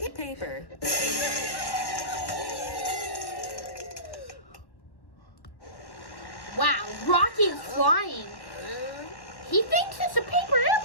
Paper. Wow, Rocky is flying. He thinks it's a paper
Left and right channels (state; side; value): late; right; 1.1 ms